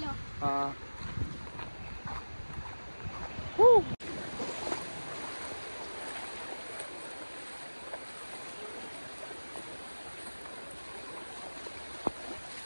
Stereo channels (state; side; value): inverted; both; correlation -1.00